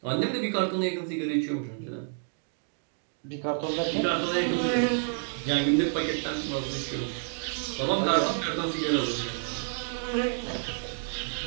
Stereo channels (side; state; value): left; silent; digital silence